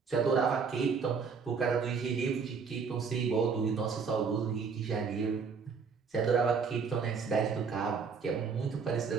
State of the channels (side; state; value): left; quieter; 5.6 dB